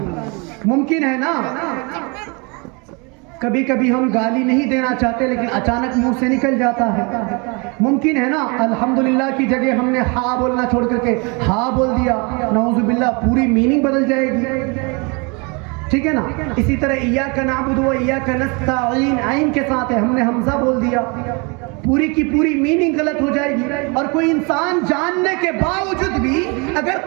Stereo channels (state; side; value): quieter; left; 30.8 dB